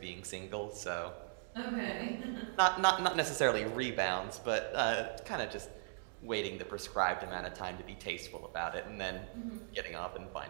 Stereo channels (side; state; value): left; silent; digital silence